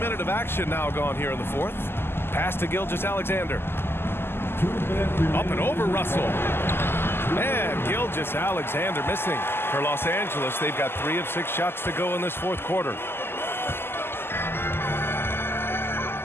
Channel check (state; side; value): late; right; 0.11 ms